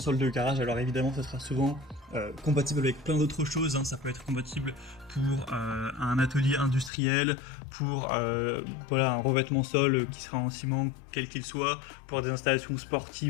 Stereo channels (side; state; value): right; drops out; at 6.9 s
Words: de garage. Alors évidemment ça sera souvent compatible avec plein d'autres choses, hein. Ça peut être compatible pour un atelier industriel, pour voilà, un revêtement sol qui sera en ciment quel qu'il soit, pour des installations